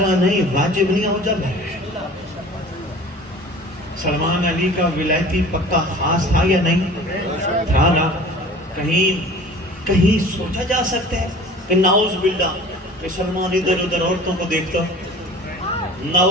نہیں, واجب نہیں اوجب ہے. سلمان علی کا ولایتی پکا خاص تھا یا نہیں تھا نا؟ کہیں سوچا جا سکتا ہے کہ نعوذ باللہ کہ سلمان ادھر ادھر عورتوں کو دیکھتا,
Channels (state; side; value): normal; both; correlation 0.44